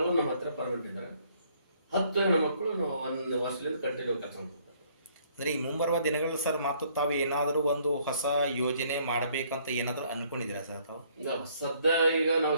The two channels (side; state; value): both; inverted; correlation -0.64